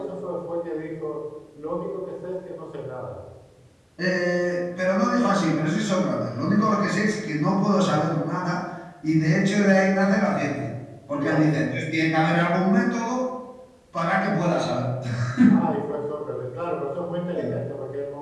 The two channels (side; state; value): both; identical; correlation 1.00